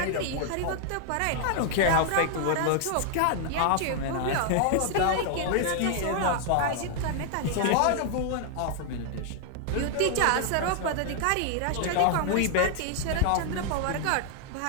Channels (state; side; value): different; both; correlation 0.00